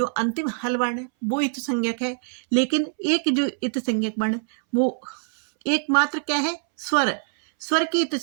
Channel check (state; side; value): silent; left; 63 dB below the other